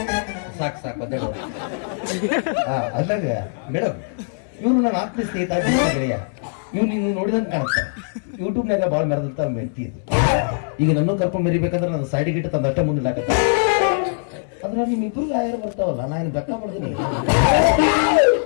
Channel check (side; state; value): right; silent; digital silence